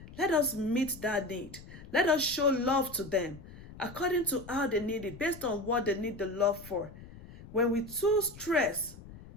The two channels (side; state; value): left; noise; rumble, 17 dB below the sound